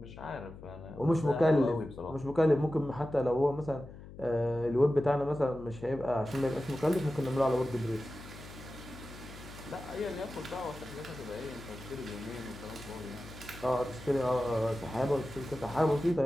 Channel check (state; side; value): noise; left; hum, 15 dB below the sound